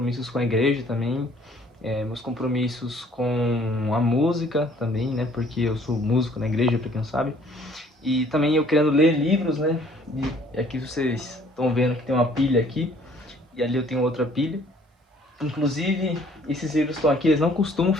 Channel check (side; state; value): both; normal; correlation 0.58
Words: com a igreja também, meus compromissos com a música também, né? Porque eu sou músico na igreja, pra quem não sabe. E também eu querendo ler livros, né? E aqui vocês estão vendo que tem uma pilha aqui, e ali eu tenho outra pilha. Inclusive, esses livros estão aqui, eles não costumam